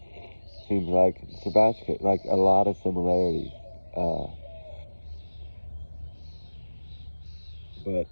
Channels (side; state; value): both; inverted; correlation -1.00